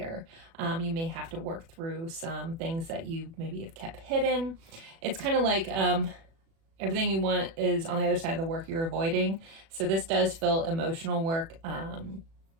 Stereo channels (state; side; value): late; left; 36 ms